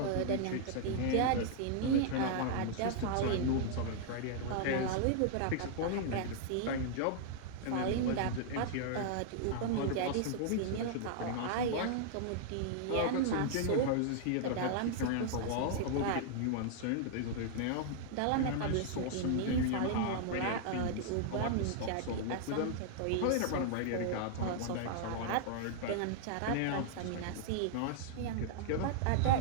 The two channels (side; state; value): both; different; correlation -0.01